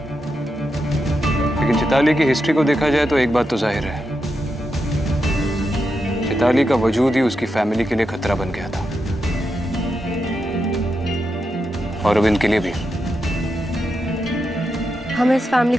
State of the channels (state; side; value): normal; both; correlation 0.86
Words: लेकिन चैताली की हिस्ट्री को देखा जाए तो एक बात तो जाहिर है, चैताली का वजूद ही उसकी फैमिली के लिए खतरा बन गया था, और अब इनके लिए भी। हमें इस फैमिली